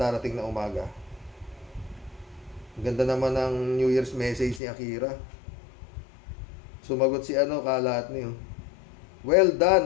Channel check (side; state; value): right; drops out; at 4.6 s